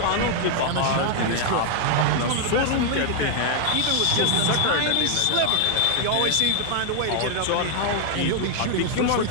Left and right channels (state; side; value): different; both; correlation 0.00